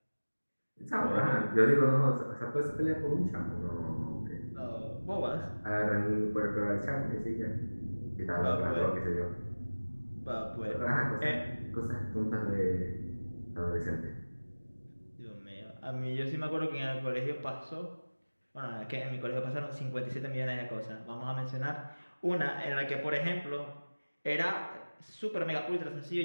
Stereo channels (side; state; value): both; inverted; correlation -1.00